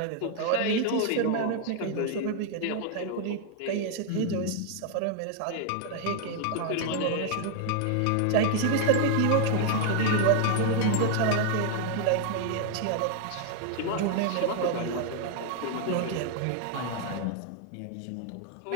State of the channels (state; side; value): different; both; correlation 0.00